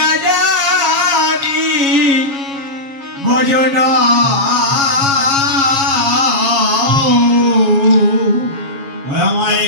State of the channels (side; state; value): left; late; 7.2 ms